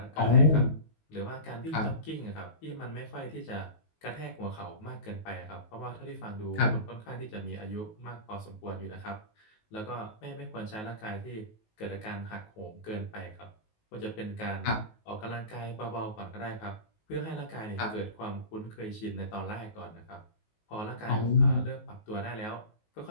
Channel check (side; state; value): right; late; 19 ms